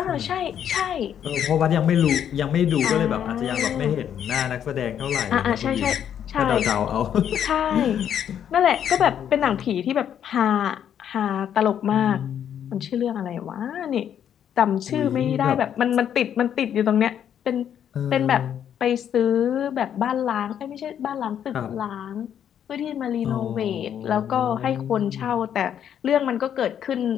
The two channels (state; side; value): quieter; right; 9.3 dB